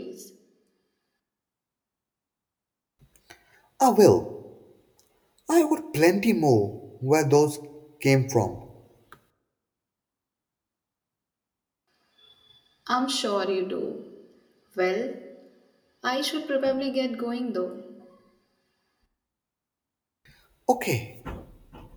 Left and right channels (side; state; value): both; identical; correlation 1.00